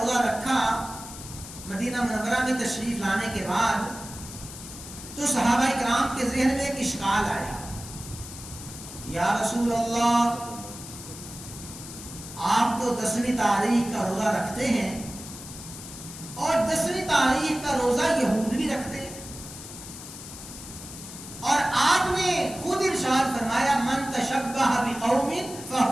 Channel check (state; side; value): noise; left; hiss, 13 dB below the sound